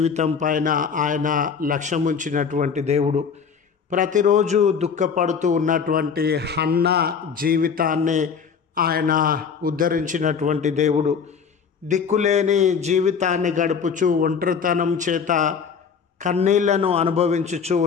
పైన ఆయన లక్ష్యం ఉంచినటువంటి దేవుడు. ప్రతిరోజు దుఃఖపడుతూ ఉన్నటువంటి హన్న జీవితాన్ని ఆయన ఉద్ధరించినటువంటి దేవుడు. దిక్కులేని జీవితాన్ని గడుపుచూ ఒంటరితనం చేత కన్నీళ్లను అనుభవించుచూ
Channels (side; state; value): right; quieter; 6.4 dB